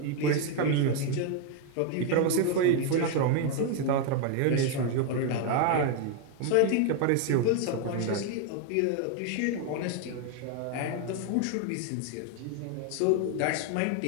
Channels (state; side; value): different; both; correlation 0.01